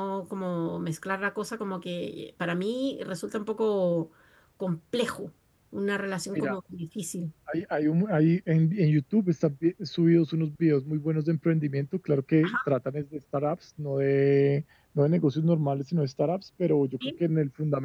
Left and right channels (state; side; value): identical; both; correlation 1.00